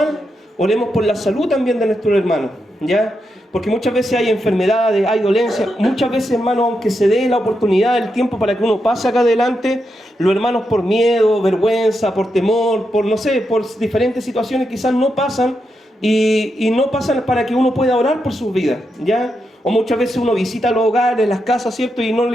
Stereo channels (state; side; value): normal; both; correlation 0.85